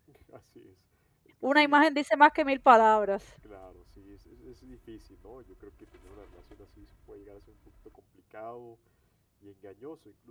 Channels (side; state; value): both; identical; correlation 1.00